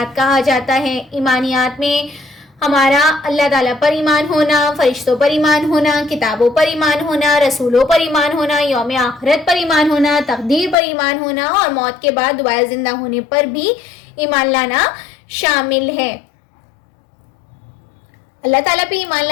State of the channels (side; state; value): right; drops out; at 10.8 s